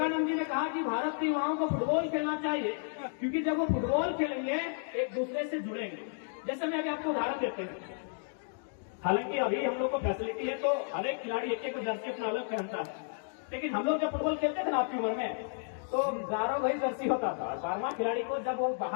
जी ने कहा कि भारत के युवाओं को फुटबॉल खेलना चाहिए, क्योंकि जब वो फुटबॉल खेलेंगे एक दूसरे से जुड़ेंगे। जैसे मैं अभी आपको उदाहरण देते हैं, हालांकि अभी हम लोग को फैसिलिटी है तो हर एक खिलाड़ी एक एक जर्सी अपना अलग पहनता है, लेकिन हम लोग जब फुटबॉल खेलते थे ना आपकी उम्र में तो 11 वही जर्सी होता था और 12वां खिलाड़ी को जब वो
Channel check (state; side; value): silent; right; digital silence